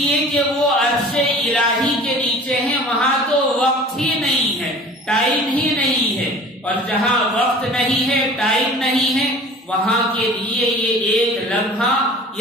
کہ وہ عرش الہی کے نیچے ہیں، وہاں تو وقت ہی نہیں ہے، ٹائم ہی نہیں ہے، اور جہاں وقت نہیں ہے، ٹائم نہیں ہے، وہاں کے لیے یہ ایک لمحہ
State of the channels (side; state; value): both; normal; correlation 0.44